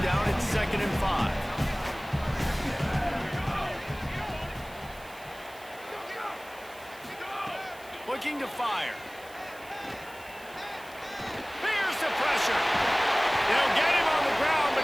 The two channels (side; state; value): right; noise; hiss, 21 dB below the sound